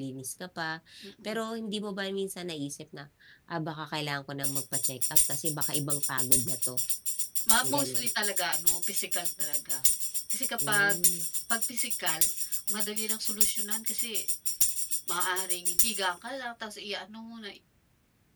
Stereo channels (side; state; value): both; identical; correlation 1.00